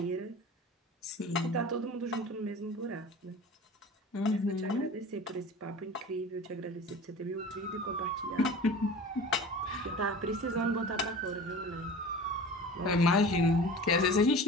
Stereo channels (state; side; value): normal; both; correlation 0.37